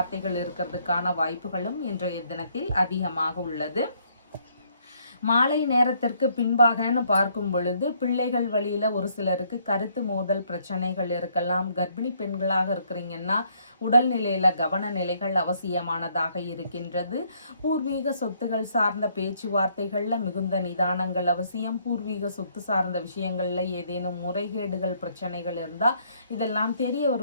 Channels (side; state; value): both; inverted; correlation -0.68